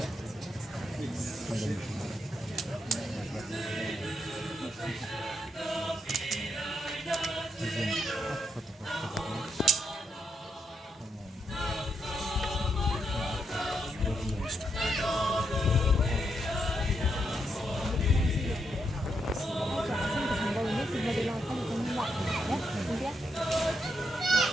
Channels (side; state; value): both; normal; correlation 0.81